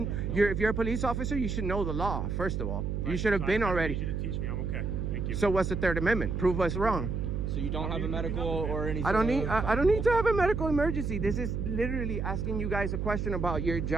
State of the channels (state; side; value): noise; right; hum, 2 dB below the sound